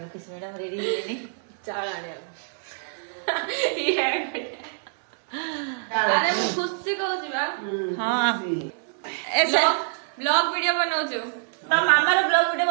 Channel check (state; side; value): silent; left; digital silence